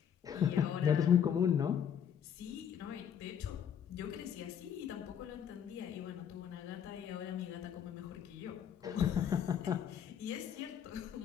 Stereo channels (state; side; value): quieter; right; 8.6 dB